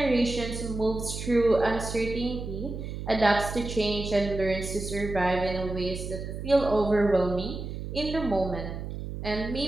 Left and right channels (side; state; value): right; noise; hum, 7 dB below the sound